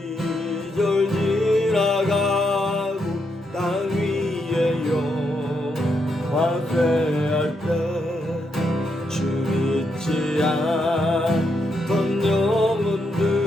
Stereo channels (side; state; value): both; normal; correlation 0.80